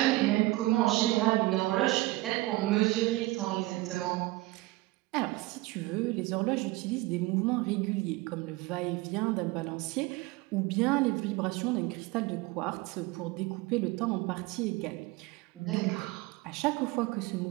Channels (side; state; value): left; quieter; 20.2 dB